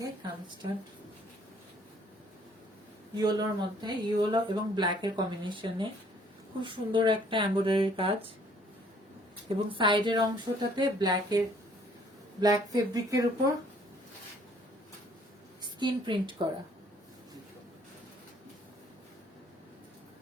কামিজটা ইয়েলোর মধ্যে, ইয়েলো এবং ব্ল্যাক এর কম্বিনেশনে খুব সুন্দর একটা এমব্রয়ডারির কাজ, এবং সাইডের অংশটাতে ব্ল্যাক ফেব্রিকের উপর স্কিন প্রিন্ট করা।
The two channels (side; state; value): both; normal; correlation 0.60